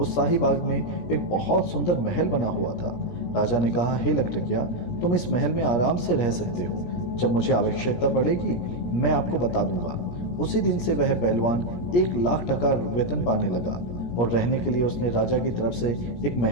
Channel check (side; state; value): right; late; 17 ms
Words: शाही बाग में एक बहुत सुंदर महल बना हुआ था। राजा ने कहा, हे लखटकिया, तुम इस महल में आराम से रह सकते हो। जब मुझे आवश्यकता पड़ेगी मैं आपको बता दूंगा। उसी दिन से वह पहलवान 1,00,000 टका वेतन पाने लगा और रहने के लिए उसने राजा की तरफ से एक